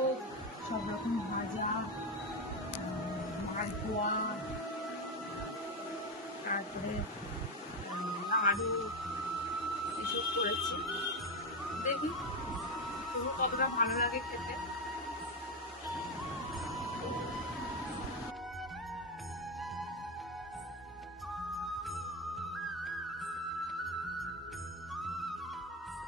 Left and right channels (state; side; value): normal; both; correlation 0.13